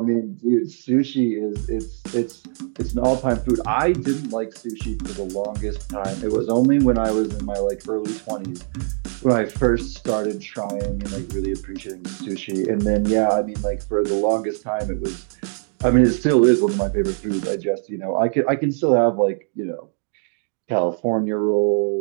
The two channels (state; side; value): silent; left; digital silence